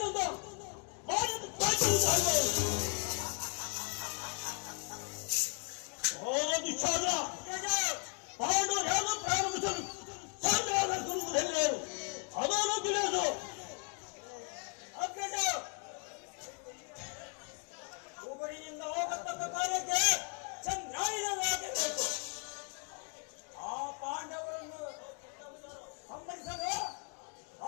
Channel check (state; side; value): quieter; right; 39.3 dB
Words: ಮಾಡಿದ್ದು ದುಶ್ಯಾಸನ ಪಾಂಡು ಯಾರು ಪ್ರಾರಂಭಿಸಲು ಸಂಗ್ರಾಮ ಹೆಣ್ಣರು ಅದನ್ನು ತಿಳಿಯೋದು. ಊರಿನಿಂದ ಹೋಗತಕ್ಕ ಕಾರ್ಯಕ್ಕೆ ಚಂದ್ರಾಯಣವಾಗಬೇಕು. ಆ ಪಾಂಡವರನ್ನು ಸಂಹರಿಸಲು